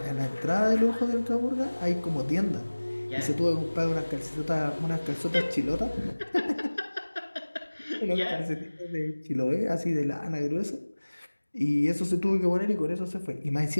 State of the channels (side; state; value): both; inverted; correlation -1.00